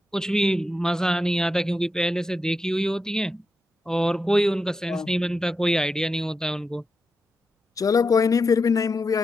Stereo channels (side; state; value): both; normal; correlation 0.87